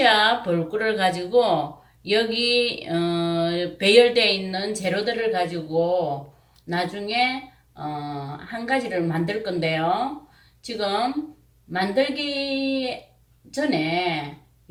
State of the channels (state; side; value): identical; both; correlation 1.00